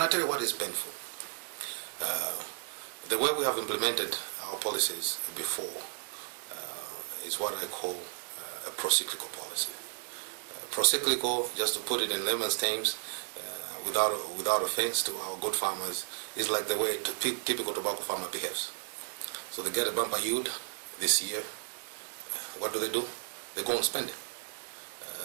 I'll tell you what is painful. The way we have implemented our policies before is what I call a pro-cyclical policy. Pro-cyclical, just to put it in layman's terms, without offense to our good farmers, is like the way a typical tobacco farmer behaves. So they get a bumper yield this year. What do? They go and spend it.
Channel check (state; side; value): silent; left; digital silence